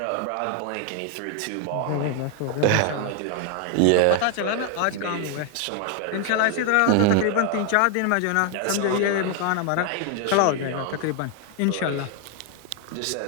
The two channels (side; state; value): both; different; correlation 0.00